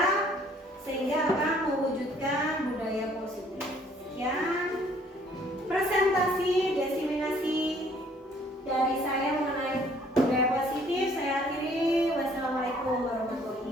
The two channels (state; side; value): normal; both; correlation 0.60